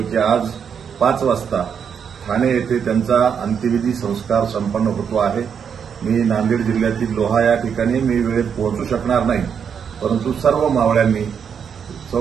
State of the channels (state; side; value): quieter; left; 7.3 dB